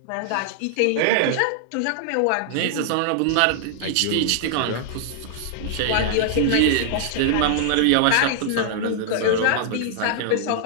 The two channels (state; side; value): different; both; correlation -0.01